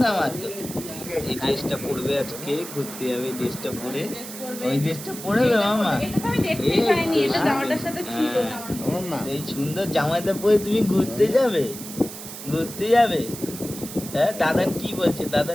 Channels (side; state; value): right; noise; hiss, 11 dB below the sound